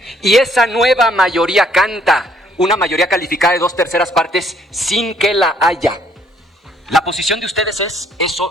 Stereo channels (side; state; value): both; normal; correlation 0.65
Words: Y esa nueva mayoría canta una mayoría calificada de 2/3 partes sin que la haya. La posición de ustedes es, eso